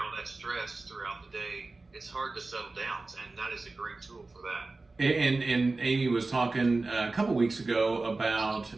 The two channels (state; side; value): quieter; left; 3.5 dB